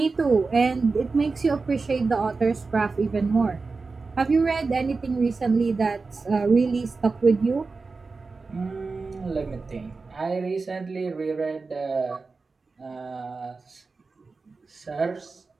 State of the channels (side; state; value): left; quieter; 4.1 dB